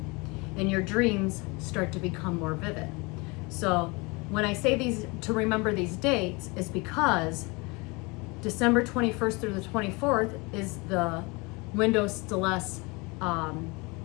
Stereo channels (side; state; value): right; quieter; 27.1 dB